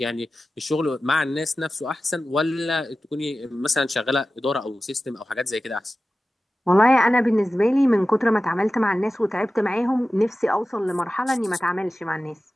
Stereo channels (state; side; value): normal; both; correlation 0.95